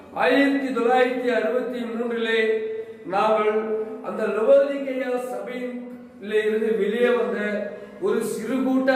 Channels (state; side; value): identical; both; correlation 1.00